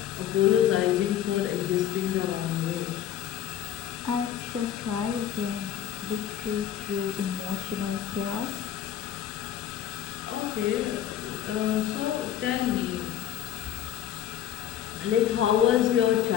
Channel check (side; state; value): right; quieter; 10.6 dB